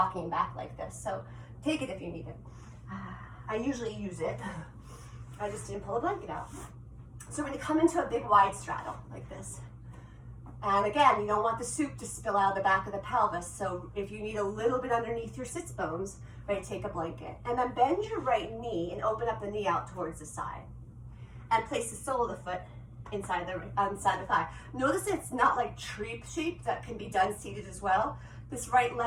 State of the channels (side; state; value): both; identical; correlation 1.00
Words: back like this. So take it if you need it. I usually use it. I just didn't pull a blanket out. So we're gonna come into a big wide straddle like this. And again, you don't want the soup to spill out of the back of the pelvis. So if you need a little bit underneath your sits bones, right, take a blanket. And then bend your right knee and open up the knee out towards the side. And place the sole of the foot inside the thigh. Notice it's not like tree shape that can be done seated as well. This left